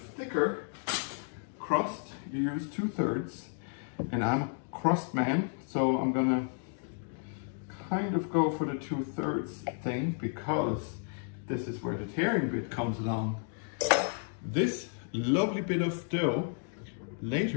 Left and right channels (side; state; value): right; silent; 56 dB below the other